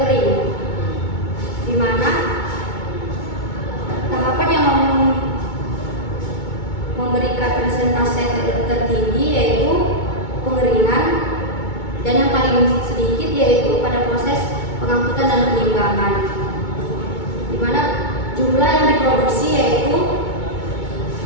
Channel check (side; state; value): right; late; 2.2 ms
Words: di mana tahapan yang memberikan persentase tertinggi yaitu pengeringan, dan yang paling sedikit yaitu pada proses pengangkutan dan penimbangan, di mana jumlah yang diproduksi yaitu